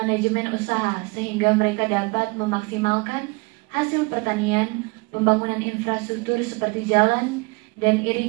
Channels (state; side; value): quieter; left; 28.5 dB